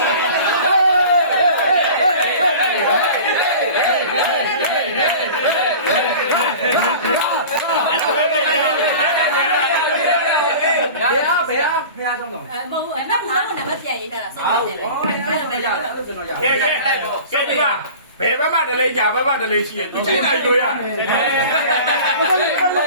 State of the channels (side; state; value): both; inverted; correlation -0.39